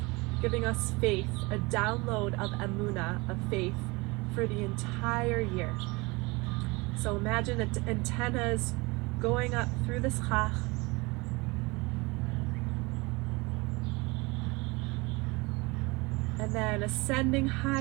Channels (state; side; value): quieter; left; 24.9 dB